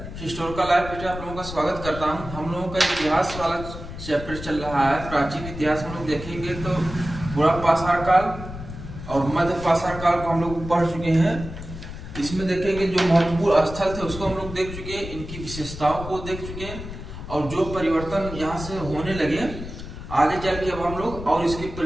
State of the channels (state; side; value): noise; left; rumble, 10 dB below the sound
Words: हिस्टोरिकल लाइफ पे आप लोगों का स्वागत करता हूं। हम लोगों का इतिहास वाला चैप्टर चल रहा है। प्राचीन इतिहास हम लोग देखेंगे तो बुरा पाषाण काल और मध्य पाषाण काल को हम लोग पढ़ चुके हैं। इसमें देखेंगे जो महत्वपूर्ण स्थल थे उसको हम लोग देख चुके हैं, इनकी विशेषताओं को देख चुके हैं और जो परिवर्तन यहाँ से होने लगे आगे चल के अब हम लोग और इसके